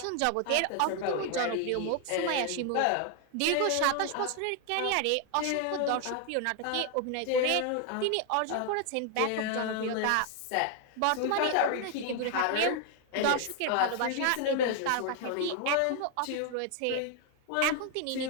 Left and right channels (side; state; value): both; different; correlation 0.00